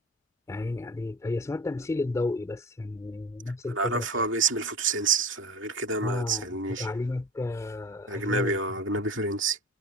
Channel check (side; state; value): both; normal; correlation 0.34